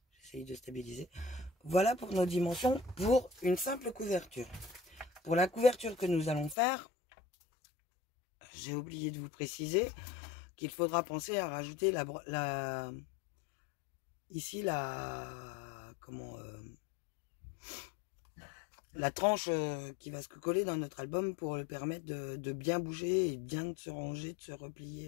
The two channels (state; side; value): drops out; right; at 6.6 s